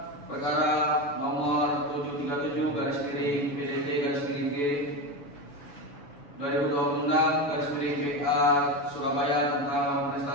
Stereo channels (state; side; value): late; right; 7.1 ms